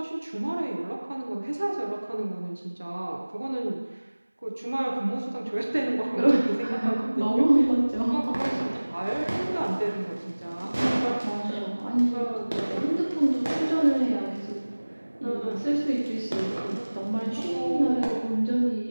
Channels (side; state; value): both; inverted; correlation -1.00